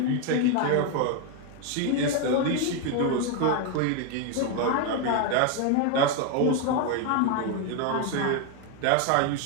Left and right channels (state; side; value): different; both; correlation 0.01